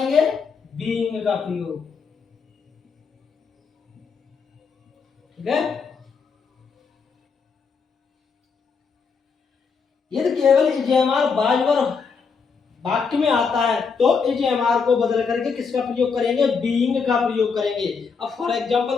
बीइंग का प्रयोग। ठीक है। यदि केवल इजेमार बाजबर वाक्य में आता है तो इजेमार को बदल करके किसका प्रयोग करेंगे, बीइंग का प्रयोग करेंगे। अब फॉर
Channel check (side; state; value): right; quieter; 5.5 dB